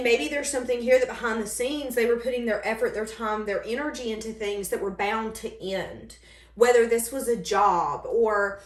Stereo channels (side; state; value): both; identical; correlation 1.00